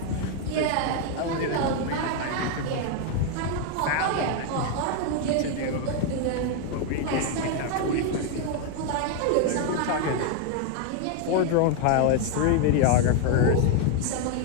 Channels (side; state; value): both; different; correlation 0.01